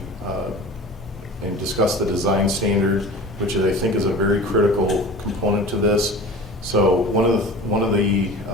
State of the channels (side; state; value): both; normal; correlation 0.37